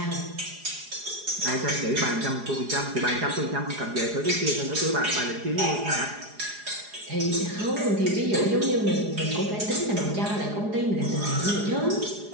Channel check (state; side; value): late; left; 4.8 ms